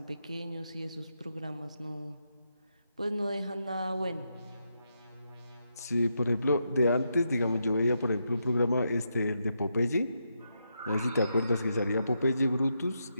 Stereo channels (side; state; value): both; inverted; correlation -0.83